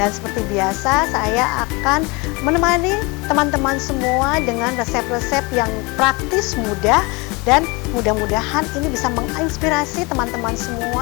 seperti biasa, saya akan menemani teman-teman semua dengan resep-resep yang praktis, mudah, dan mudah-mudahan ini bisa menginspirasi teman-teman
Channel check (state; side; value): quieter; right; 26.8 dB